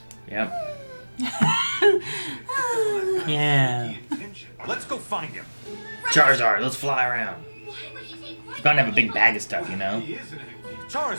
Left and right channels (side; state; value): both; inverted; correlation -1.00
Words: Yep. Yeah. Let's go find him. Charizard, let's fly around. Why would he take He's bound to have a big bag of stuff, you know? He is an